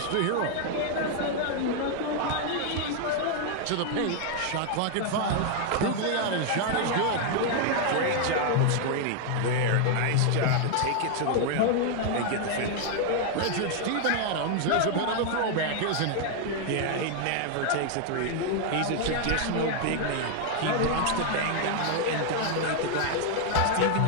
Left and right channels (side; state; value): both; different; correlation 0.00